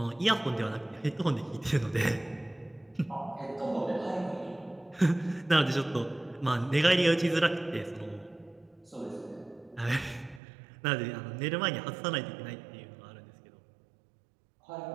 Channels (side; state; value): left; drops out; at 10.4 s